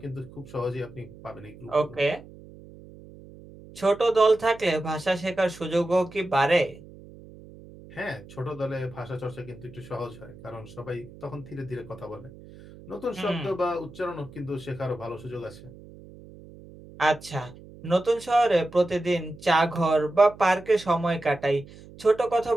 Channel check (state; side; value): noise; right; hum, 19 dB below the sound